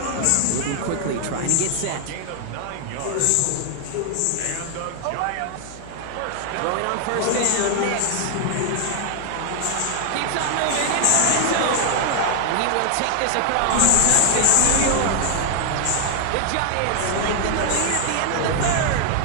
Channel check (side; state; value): both; different; correlation 0.00